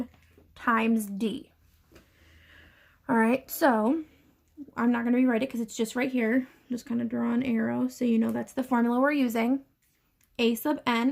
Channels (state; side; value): identical; both; correlation 1.00